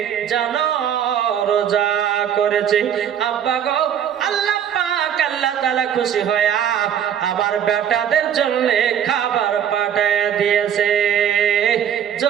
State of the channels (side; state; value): left; quieter; 9.1 dB